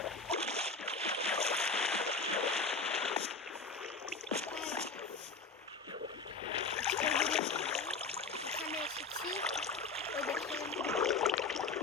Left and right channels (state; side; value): quieter; right; 4.1 dB